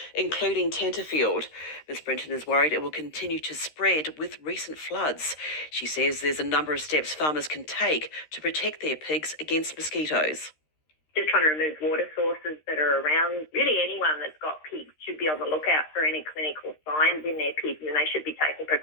including Tenterfield. Ms Britton is worried it will continue to spread with recent floods. She says there's a number of steps farmers can take to protect their pigs against mosquitoes. Just trying to remove water sources that are around. Really anyone that's got pigs should be on the lookout for any clinical signs in their pigs, and they should be taking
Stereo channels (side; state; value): right; late; 13 ms